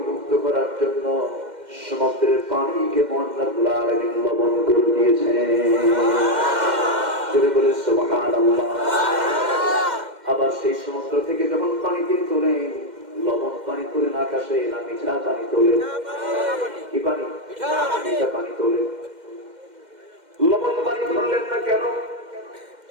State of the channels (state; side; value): late; left; 2.1 ms